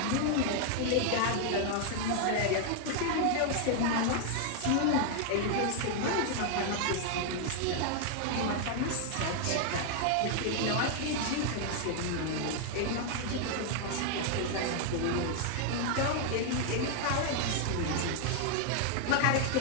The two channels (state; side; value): different; both; correlation 0.00